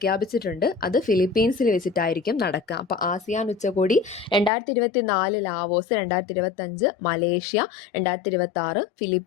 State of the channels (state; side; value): drops out; right; at 4.5 s